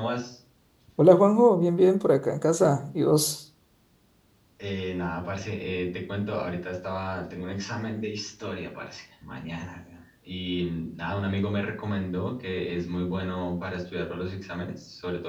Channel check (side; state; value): both; identical; correlation 1.00